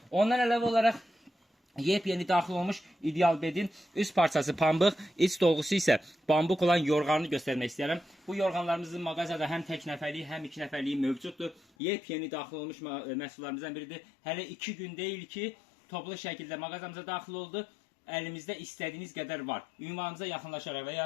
Ondan əlavə olaraq yepyeni daxil olmuş İdealbetin üst parçası pambıq, iç dolgusu isə bambuq olan yorğanını göstərmək istəyirəm. Bu yorğanlarımızın mağazada həm tək nəfərliyi, həm 2 nəfərliyi mövcuddur. Yepyeni daxil olmuş məhsullarımızdan biridir. Hələ 2 gün deyil ki, toplu şəkildə mağazamıza daxil oldu. Əlimizdə istədiyiniz qədər var. Ünvanımıza yaxınlaşaraq və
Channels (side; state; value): right; drops out; at 11.6 s